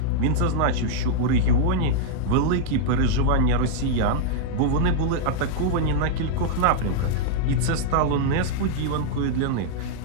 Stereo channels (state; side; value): different; both; correlation -0.01